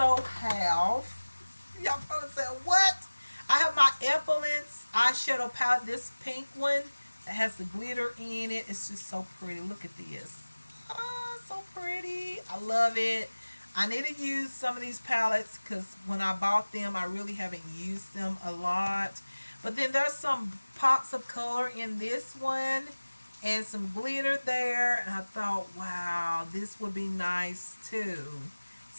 have, y'all probably said, what? I have my Epilance eyeshadow palette, this pink one that has the glitter in it. It's just so pretty. Look at this. Oh, so pretty. I love it. I need to use some of these palettes because when I bought them, I really haven't used them a lot. But then there's some pops of color in this one and some glitter there. And I thought, wow, this would be nice too.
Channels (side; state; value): both; inverted; correlation -1.00